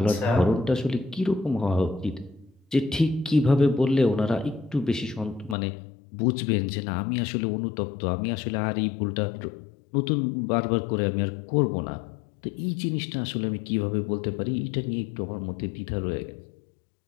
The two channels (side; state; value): right; drops out; at 5.6 s